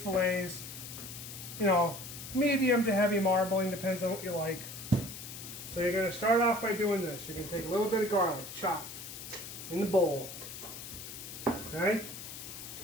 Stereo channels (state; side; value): noise; left; hiss, 11 dB below the sound